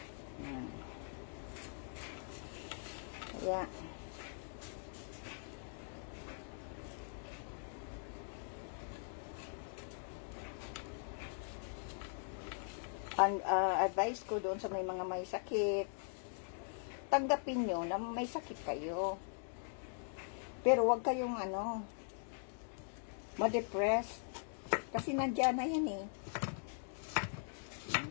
Kaya ang advice ko doon sa may mga may sakit, tanggapin nyo na may sakit kayo. Pero wag kayong ma-depress. Kasi nandiyan na yan eh.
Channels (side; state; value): right; silent; digital silence